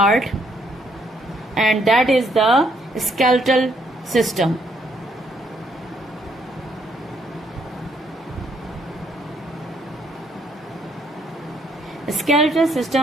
and that is the skeletal system. The skeletal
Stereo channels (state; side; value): normal; both; correlation 0.70